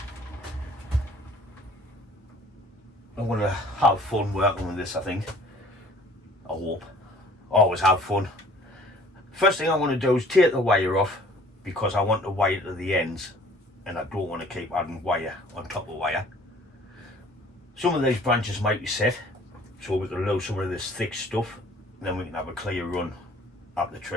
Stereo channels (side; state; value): both; normal; correlation 0.53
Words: I'm going to have fun working with this, I think. I hope. Always have fun. First thing I want to do is take the wire off, because I want the wire to the ends and I don't want to keep adding wire on top of wire. Some of these branches might be set, so we can lose some of this thick stuff, and then we can have a clear run up the